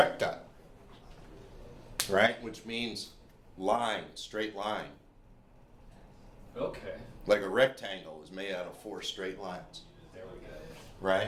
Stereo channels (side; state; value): both; identical; correlation 1.00